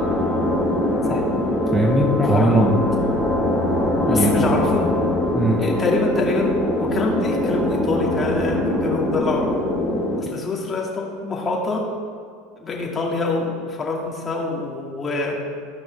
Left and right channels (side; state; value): both; normal; correlation 0.55